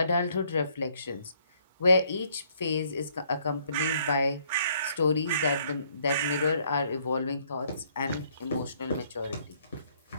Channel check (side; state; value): both; inverted; correlation -0.66